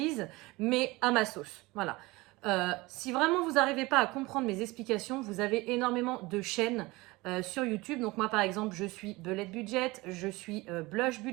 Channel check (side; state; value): left; quieter; 21.9 dB